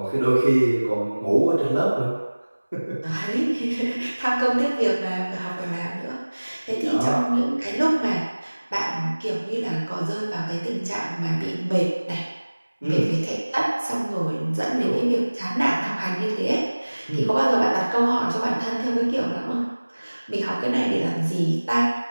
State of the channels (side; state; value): both; inverted; correlation -1.00